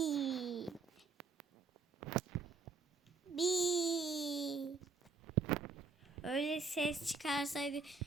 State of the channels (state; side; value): quieter; left; 4.5 dB